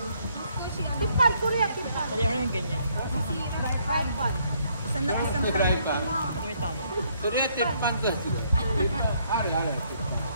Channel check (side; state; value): both; inverted; correlation -0.69